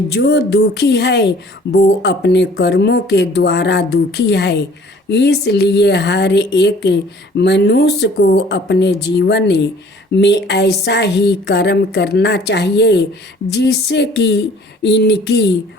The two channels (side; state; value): both; normal; correlation 0.53